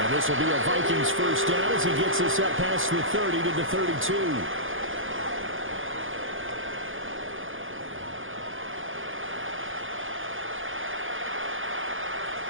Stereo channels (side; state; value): left; late; 0.58 ms